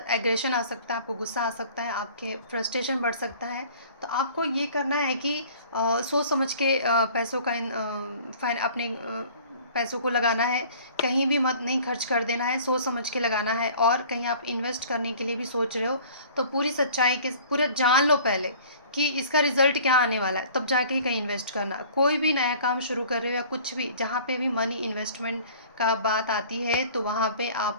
एग्रेशन आ सकता है, आपको गुस्सा आ सकता है, आपके फ्रस्ट्रेशन बढ़ सकता है। तो आपको ये करना है कि सोच समझ के पैसों का अपने पैसों को लगाना है। कहीं भी मत नहीं खर्च कर देना है, सोच समझ के लगाना है। और कहीं आप इन्वेस्ट करने के लिए भी सोच रहे हो तो पूरी सच्चाई के पूरा जान लो पहले कि इसका रिज़ल्ट क्या आने वाला है, तब जाके ही कहीं इन्वेस्ट करना। कोई भी नया काम शुरू कर रहे हो या कुछ भी, जहाँ पे भी मनी इन्वेस्टमेंट का बात आती है तो वहाँ पे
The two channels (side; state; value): both; inverted; correlation -0.48